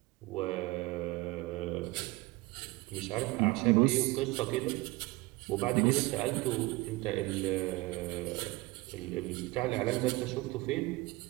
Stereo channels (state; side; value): quieter; left; 21.5 dB